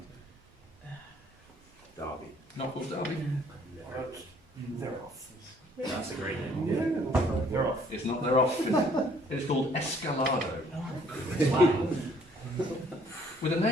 Derby. Not called Derby. That's a great name. Yeah. They're off. It's not, they're off. It is called Escalado. With a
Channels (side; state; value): both; normal; correlation 0.61